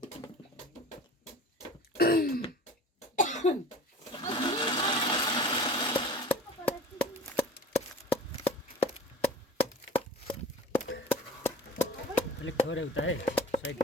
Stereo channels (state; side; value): normal; both; correlation 0.40